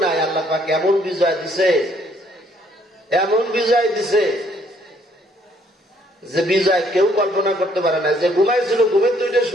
নাই। আল্লাহ পাক এমন বিজয় দিছে, এমন বিজয় দিছে যে বিজয় কেউ কল্পনা করতে পারে না। যে ঘুমাইছিল ঘুমের দুইটা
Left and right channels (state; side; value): normal; both; correlation 0.65